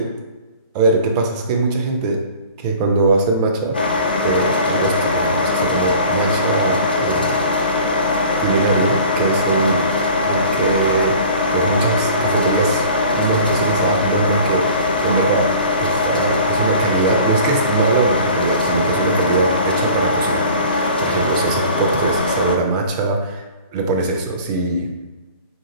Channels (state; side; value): inverted; both; correlation -0.45